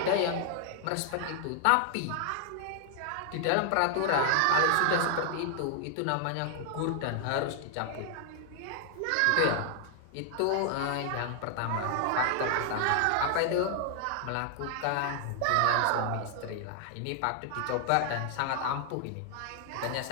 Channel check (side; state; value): both; different; correlation 0.00